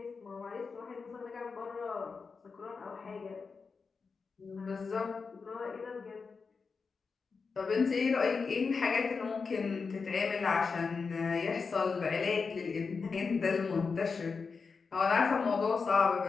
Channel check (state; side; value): quieter; right; 4.9 dB